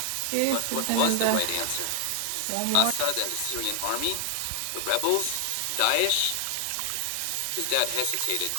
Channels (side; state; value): both; different; correlation 0.00